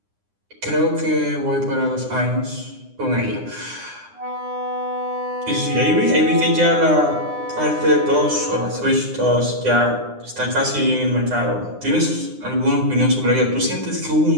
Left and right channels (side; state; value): left; late; 9.8 ms